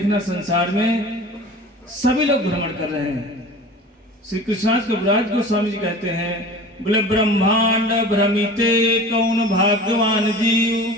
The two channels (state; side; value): normal; both; correlation 0.39